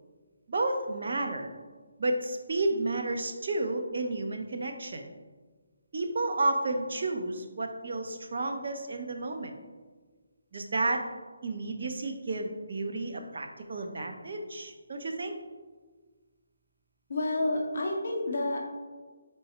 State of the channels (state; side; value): inverted; both; correlation -0.84